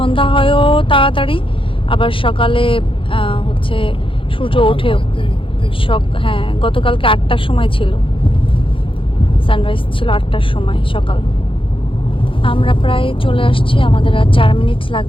হয়ও তাড়াতাড়ি, আবার সকালে হচ্ছে সূর্য ওঠেও। হ্যাঁ, গতকালকে 8টার সময় ছিল, সানরাইজ ছিল 8টার সময় সকাল। আমরা প্রায় চলে আসছি, আমাদের আর 4 মিনিট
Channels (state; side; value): late; right; 0.25 ms